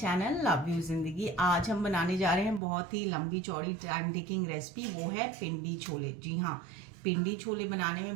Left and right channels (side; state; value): left; drops out; at 2.6 s